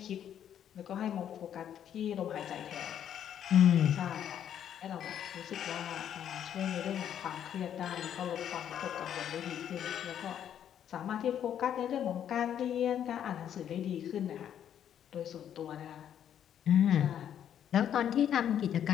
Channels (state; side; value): quieter; right; 9.7 dB